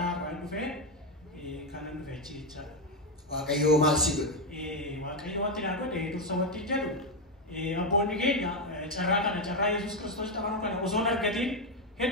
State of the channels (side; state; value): both; normal; correlation 0.07